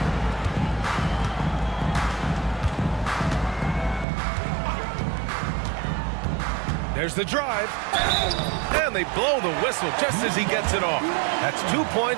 There's the drive. And they blow the whistle just as he gets it off. That's 2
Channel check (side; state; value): left; drops out; at 4.0 s